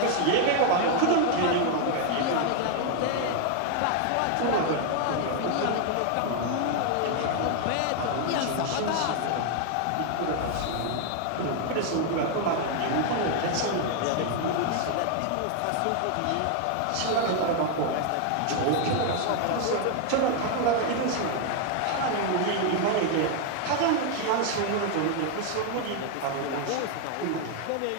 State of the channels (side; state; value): both; different; correlation 0.00